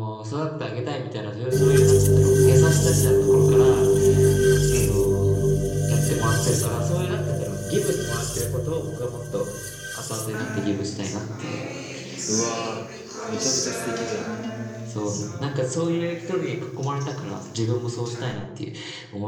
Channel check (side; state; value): both; identical; correlation 1.00